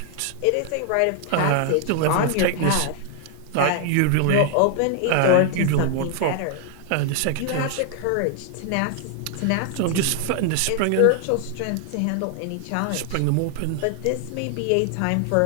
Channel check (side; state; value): both; different; correlation 0.00